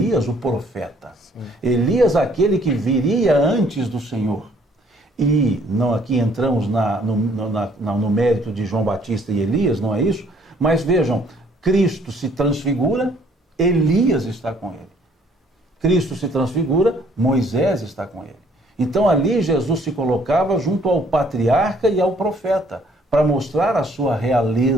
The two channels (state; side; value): normal; both; correlation 0.62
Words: o profeta. Sim. Elias aquele que viria antes do Senhor. E não, aqui entramos no mérito de João Batista e Elias, não é isso? Mas vejam, Cristo se transfigura, Elias está com ele. Cristo se transfigura, Moisés está com ele. Então ali Jesus se colocava junto ao patriarca e ao profeta, para mostrar a sua